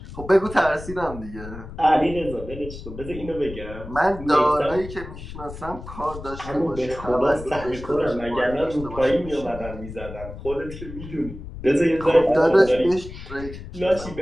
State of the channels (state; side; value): noise; left; rumble, 12 dB below the sound